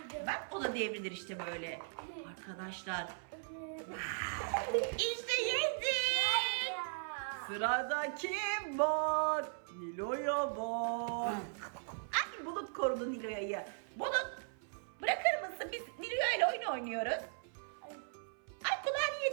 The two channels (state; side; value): silent; left; 52 dB below the other